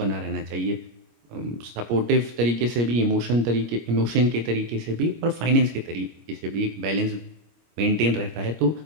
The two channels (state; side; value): late; left; 25 ms